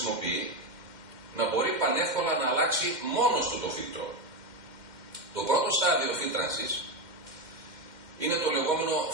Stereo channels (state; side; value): late; left; 2.1 ms